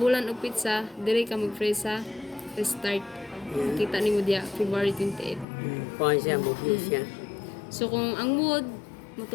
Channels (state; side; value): drops out; right; at 5.5 s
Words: o pizza, diri ka mag-freeze sa restart. Makita ni mo diya, February 28. Kuha siya, bukli siya. So, kung ang mood,